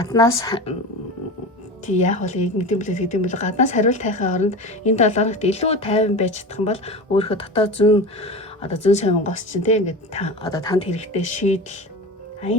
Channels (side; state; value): both; normal; correlation 0.29